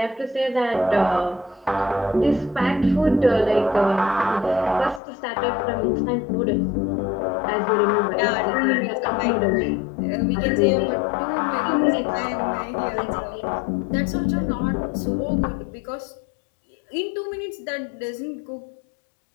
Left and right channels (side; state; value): right; drops out; at 5.0 s